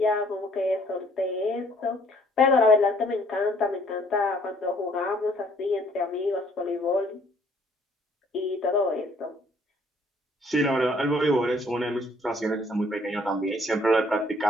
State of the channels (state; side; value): normal; both; correlation 0.61